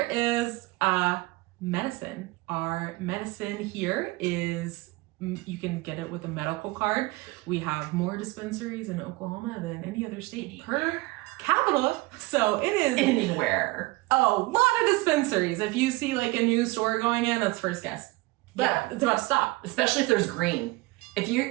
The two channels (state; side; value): quieter; left; 22.1 dB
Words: is medicine. Our medicine here is, you can get it with a medical card. We have more dispensaries in Oklahoma than any other state per capita. So it is anywhere. A lot of dispensaries. If you see a new store going in, that's first guess. But it's about to stop. Especially if there's green. If